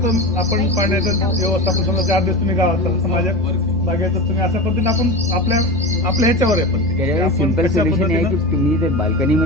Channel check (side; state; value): left; noise; hum, 12 dB below the sound